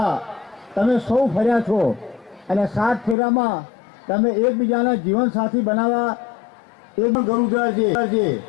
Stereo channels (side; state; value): right; drops out; at 3.2 s